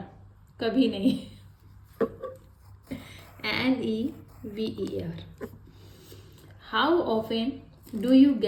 कभी नहीं। NEVER। How often do you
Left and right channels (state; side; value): identical; both; correlation 1.00